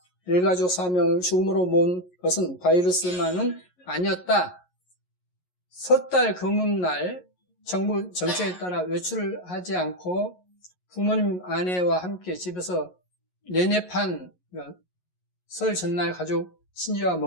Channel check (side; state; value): right; late; 11 ms